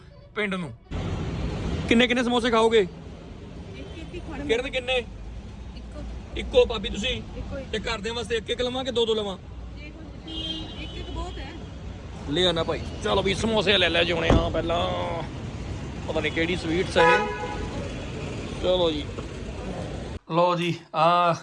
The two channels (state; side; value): identical; both; correlation 1.00